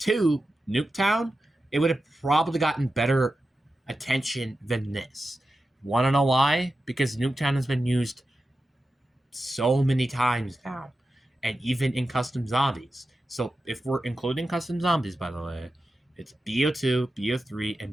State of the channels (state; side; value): normal; both; correlation 0.92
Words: Nuketown, it would have probably gotten better attention than this. Want to know why? Because Nuketown has been used so many times now, and even in custom zombies. So if we're including custom zombies, by the way, it's BO2, BO3,